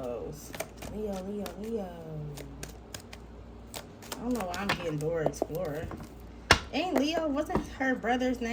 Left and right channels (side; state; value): both; identical; correlation 1.00